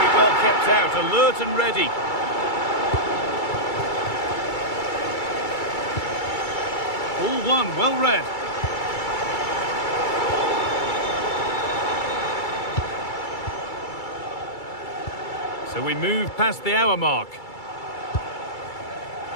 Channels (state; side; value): late; right; 2.3 ms